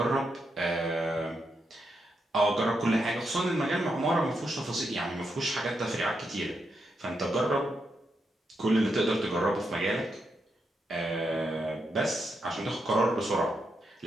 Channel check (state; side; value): normal; both; correlation 0.83